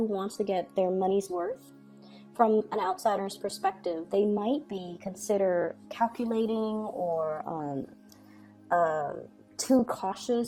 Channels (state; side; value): identical; both; correlation 1.00